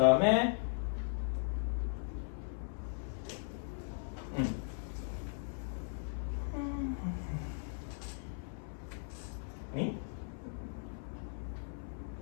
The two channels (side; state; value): right; silent; 52 dB below the other